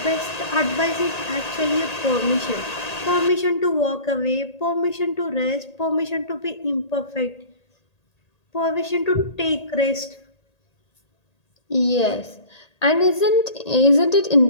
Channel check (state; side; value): late; right; 1.8 ms